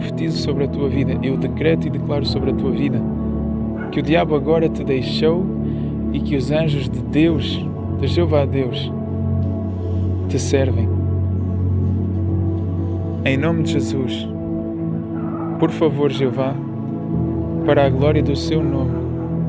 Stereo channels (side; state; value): both; identical; correlation 1.00